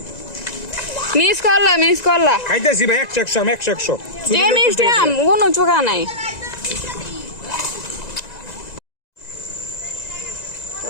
মিস করলা খাইতেছি ভাই 100 যে মিষ্টি আম কোনো চোখা নাই তো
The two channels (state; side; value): late; right; 1.9 ms